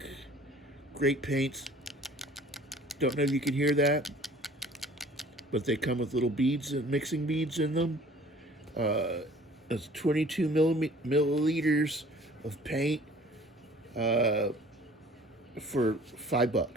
Great paints. Don't know if you can hear that, but they come with little beads and mixing beads in them. It's 22 milliliters of paint for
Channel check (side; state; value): both; normal; correlation 0.51